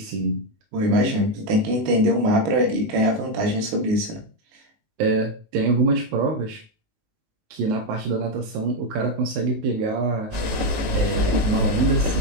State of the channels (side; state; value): left; late; 19 ms